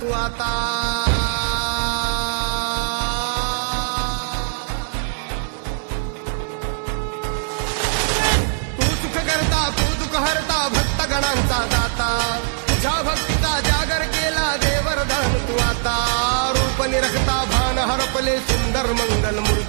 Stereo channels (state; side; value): silent; left; 56 dB below the other